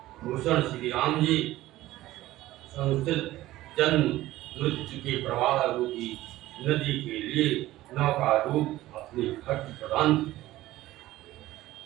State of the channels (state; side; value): quieter; left; 16.1 dB